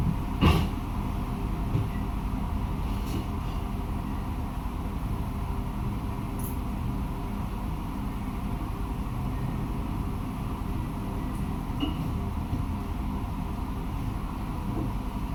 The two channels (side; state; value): both; identical; correlation 1.00